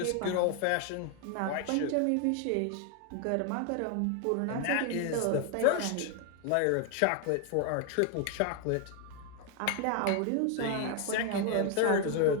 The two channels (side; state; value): both; different; correlation 0.00